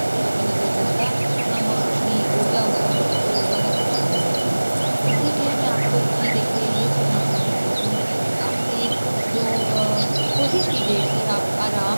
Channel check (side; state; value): both; inverted; correlation -1.00